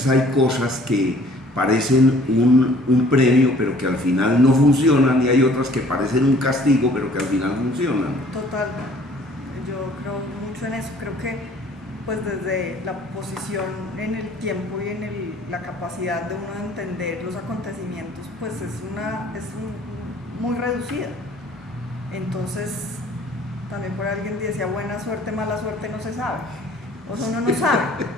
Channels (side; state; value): both; normal; correlation 0.54